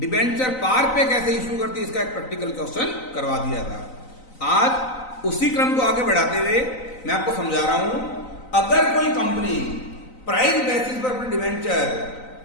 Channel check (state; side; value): late; right; 3.9 ms